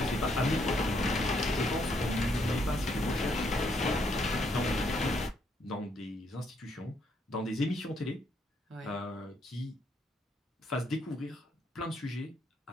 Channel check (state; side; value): normal; both; correlation 0.73